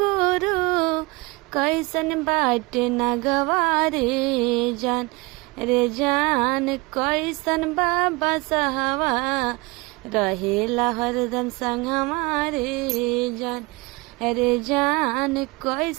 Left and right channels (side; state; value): left; quieter; 25.3 dB